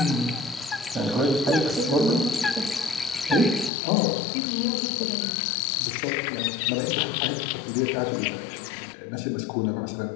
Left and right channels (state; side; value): drops out; right; at 3.7 s